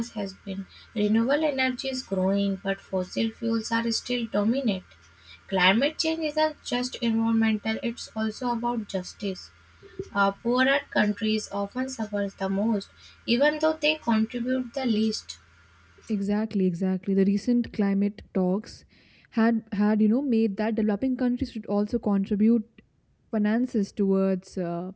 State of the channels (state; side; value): identical; both; correlation 1.00